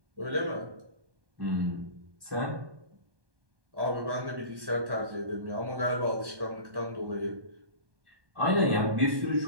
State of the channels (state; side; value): late; left; 1.2 ms